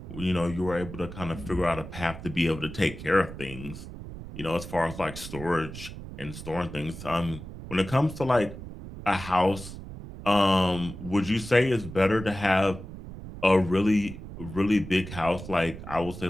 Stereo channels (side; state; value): right; noise; rumble, 12 dB below the sound